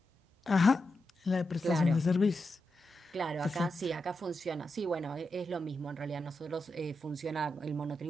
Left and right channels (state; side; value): normal; both; correlation 0.87